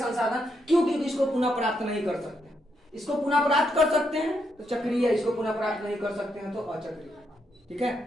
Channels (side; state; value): both; normal; correlation 0.79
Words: क्यों? क्योंकि इसको पुनः प्राप्त नहीं कर सकते। इसको पुनः प्राप्त कर सकते हैं तो चक्रीय, इसको पुनः प्राप्त नहीं कर सकते हैं तो अचक्रीय। ठीक